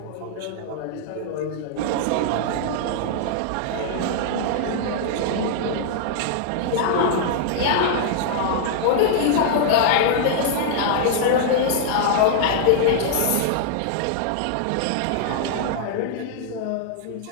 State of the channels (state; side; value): different; both; correlation -0.01